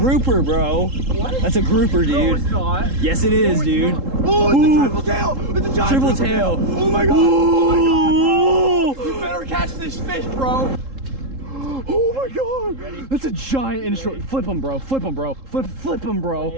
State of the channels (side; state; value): left; late; 3.7 ms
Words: bro. What? That's a grouper, dude. No, it's not. Yes, it is, dude. Oh, it's a triple tail. It's a giant triple tail. Oh my god. Oh my god, bro. You better catch this fish, bro. Oh my god. Ready? That's a giant inshore. Flip him, bro. Flip him, bro. Flip him,